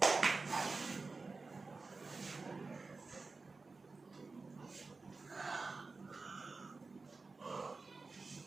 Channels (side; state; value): left; quieter; 3.9 dB